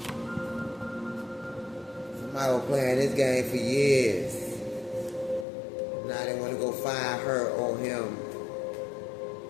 Somebody was playing this game for years. Now they want to go find her or him.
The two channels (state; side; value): drops out; right; at 5.5 s